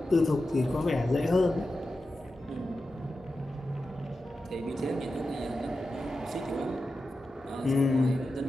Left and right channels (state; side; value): normal; both; correlation 0.91